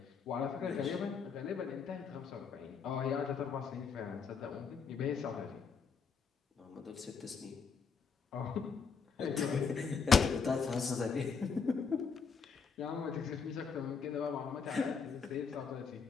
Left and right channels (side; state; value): right; quieter; 5.7 dB